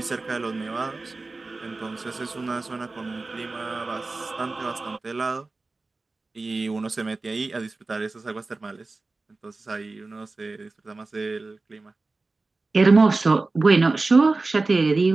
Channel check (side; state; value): left; quieter; 3.5 dB